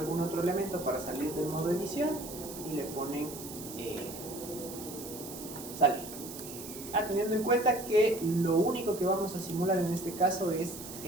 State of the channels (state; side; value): noise; right; hiss, 12 dB below the sound